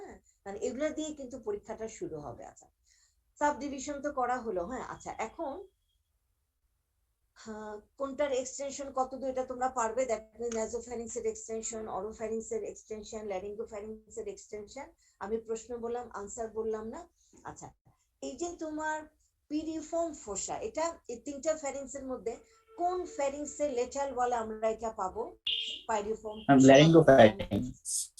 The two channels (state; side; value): identical; both; correlation 1.00